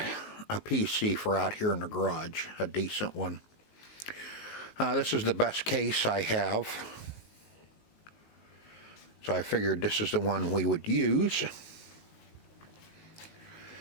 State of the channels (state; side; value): late; right; 19 ms